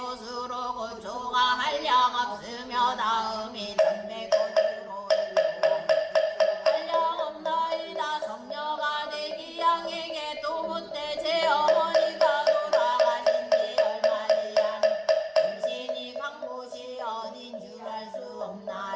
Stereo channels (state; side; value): identical; both; correlation 1.00